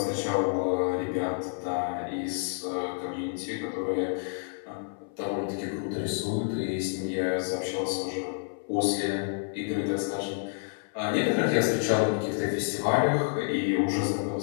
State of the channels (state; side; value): silent; right; 58 dB below the other